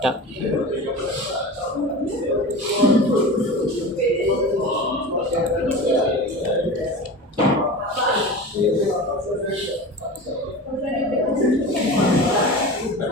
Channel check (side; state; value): both; normal; correlation 0.31